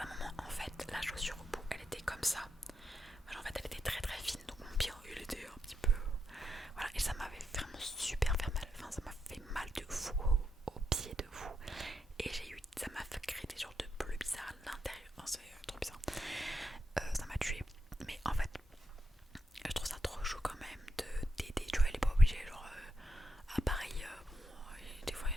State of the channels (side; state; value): both; normal; correlation 0.83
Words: moment, en fait, la chaussure au bout, elle était comme ça. En fait, elle était très très fine. Donc, mon pied, il était un petit peu. Voilà. Et ça m'avait vraiment super fait mal. Enfin, ça m'a fait mal de fou au pied de fou. Et ça m'a fait créer des genres de bleus bizarres à l'intérieur. Enfin, c'est trop bizarre. Ça m'a tué. Mais en fait, je trouve ça trop chaud quand même de d'aider. Tu vois, elle est pas obligée. Genre, à Paris, des fois il y